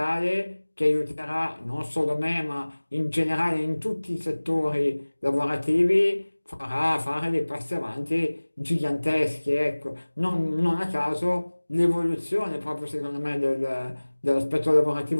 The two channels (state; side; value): inverted; both; correlation -1.00